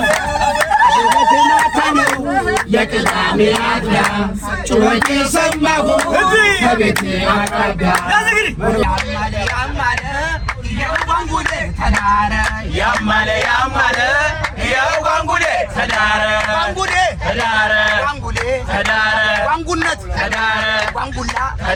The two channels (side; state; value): both; identical; correlation 1.00